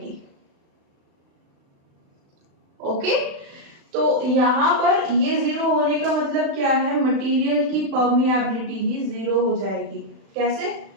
ओके। तो यहाँ पर ये 0 होने का मतलब क्या है, मटेरियल की परमिएबिलिटी ही 0 हो जाएगी। कैसे,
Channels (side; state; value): left; late; 36 ms